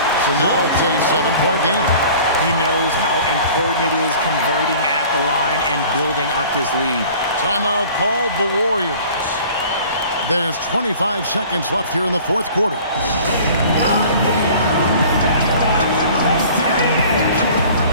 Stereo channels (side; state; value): both; inverted; correlation -0.47